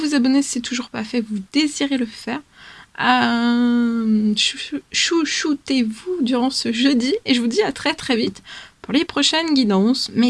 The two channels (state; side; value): identical; both; correlation 1.00